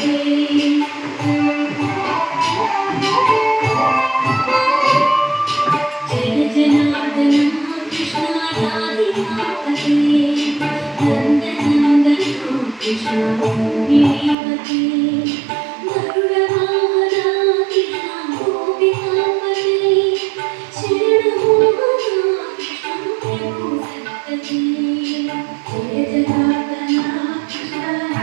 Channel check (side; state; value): left; drops out; at 14.4 s